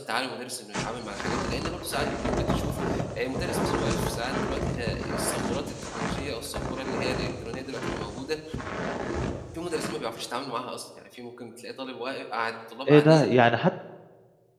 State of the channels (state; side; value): identical; both; correlation 1.00